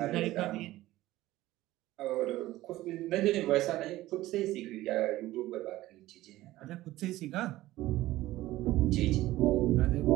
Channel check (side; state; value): left; quieter; 16.4 dB